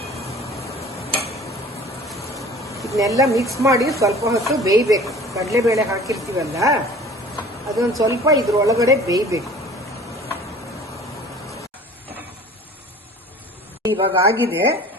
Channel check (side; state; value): both; normal; correlation 0.45